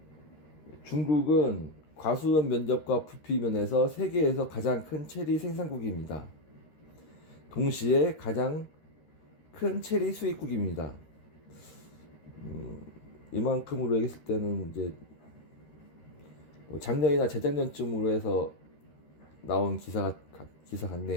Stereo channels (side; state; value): right; late; 13 ms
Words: 중국은 과수원 면적과 부피 면에서 세계에서 가장 큰 체리 생산국입니다. 동시에 가장 큰 체리 수입국입니다. 이만큼으로 얘기했을 때는 이제 뭐 작년이나 재작년쯤으로 해서 나온 기사